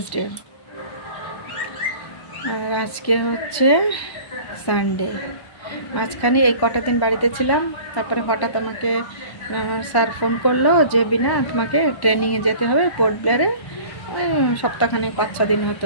আর আজকে হচ্ছে সানডে। মাঝখানে এই কটা দিন বাড়িতে ছিলাম, তারপরে হঠাৎ আমাকে আমার স্যার ফোন করলো যে বিনা তোমাকে ট্রেনিংয়ে যেতে হবে পোর্ট ব্লেয়ারে, ওই সপ্তাহখানেক 5-6 দিন হতে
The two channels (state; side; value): late; right; 1.1 ms